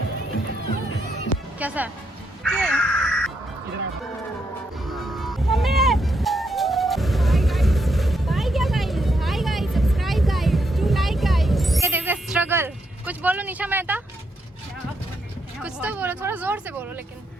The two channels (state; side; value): normal; both; correlation 0.79